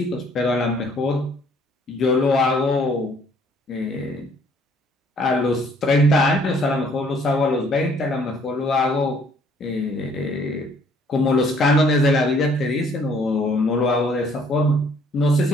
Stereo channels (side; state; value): both; normal; correlation 0.61